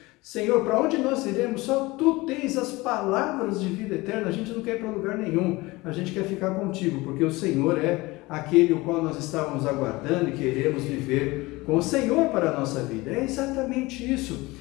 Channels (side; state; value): right; quieter; 21.6 dB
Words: Senhor, para onde nós iremos? Só tu tens as palavras de vida eterna, a gente não quer ir para lugar nenhum, a gente quer ficar contigo, porque o Senhor é aquele o qual nós estávamos aguardando e queremos viver com o Senhor para a nossa vida. É exatamente isso.